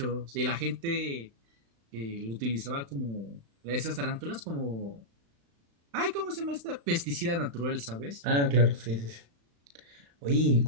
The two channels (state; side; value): late; left; 35 ms